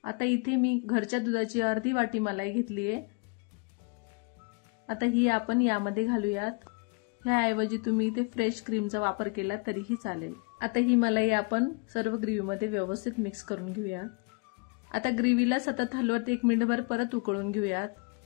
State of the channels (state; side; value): quieter; right; 32.3 dB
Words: आता इथे मी घरच्या दुधाची अर्धी वाटी मलाई घेतली आहे। आता ही आपण यामध्ये घालूयात। ह्याऐवजी तुम्ही इथे फ्रेश क्रीमचा वापर केला तरीही चालेल। आता ही मलाई आपण सर्व ग्रेव्हीमध्ये व्यवस्थित मिक्स करून घेऊयात। आता ग्रेव्हीला सतत हलवत 1 मिनिटभर परत उकळून घेऊयात।